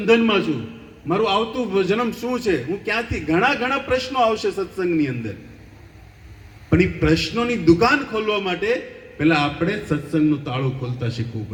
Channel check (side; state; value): both; identical; correlation 1.00